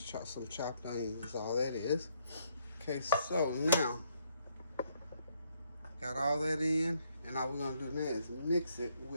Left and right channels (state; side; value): inverted; both; correlation -0.71